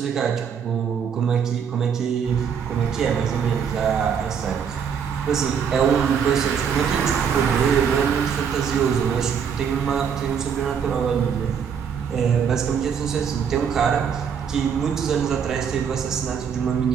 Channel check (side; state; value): left; quieter; 7.2 dB